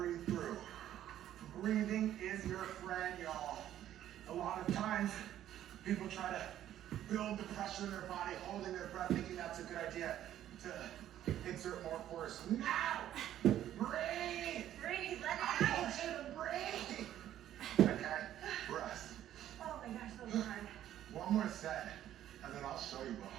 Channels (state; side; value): quieter; left; 11.9 dB